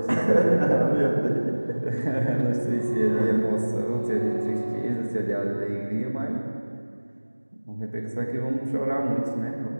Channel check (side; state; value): both; inverted; correlation -1.00